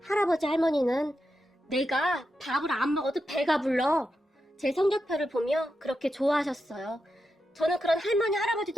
할아버지, 할머니는 내가 밥을 안 먹어도 배가 불러 제 성적표를 보며 그렇게 좋아하셨어요. 저는 그런 할머니, 할아버지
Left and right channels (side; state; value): both; normal; correlation 0.88